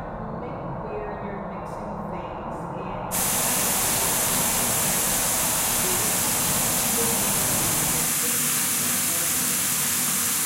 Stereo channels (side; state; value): both; identical; correlation 1.00